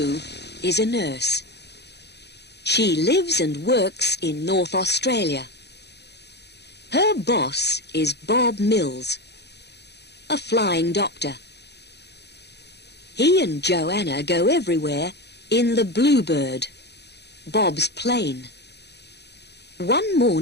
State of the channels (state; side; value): late; right; 0.49 ms